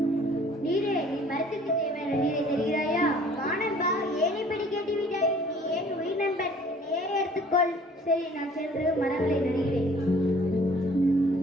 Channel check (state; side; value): normal; both; correlation 0.53